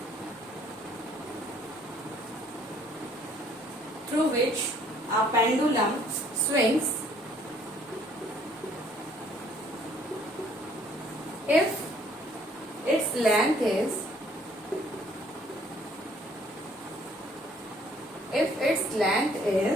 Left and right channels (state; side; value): normal; both; correlation 0.61